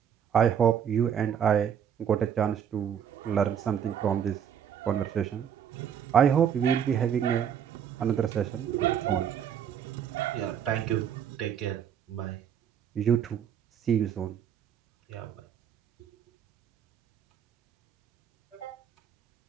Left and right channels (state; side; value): quieter; left; 8.6 dB